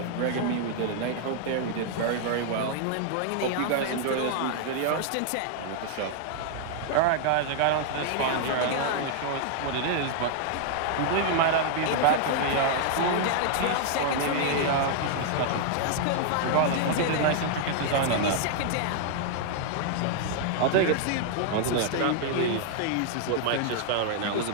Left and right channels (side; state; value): both; different; correlation 0.00